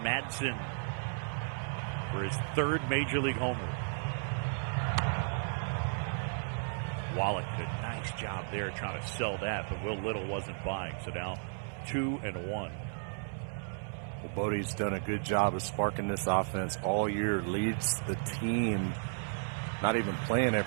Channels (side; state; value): left; silent; 55 dB below the other